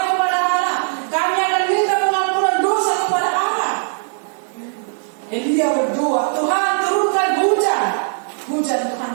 kepada Allah. Kami akan minta pengampunan dosa kepada Allah. Elia berdoa, Tuhan turunkan hujan. Hujan Tuhan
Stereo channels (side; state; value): left; silent; digital silence